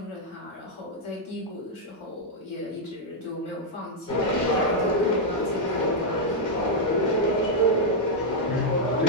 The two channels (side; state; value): both; normal; correlation -0.03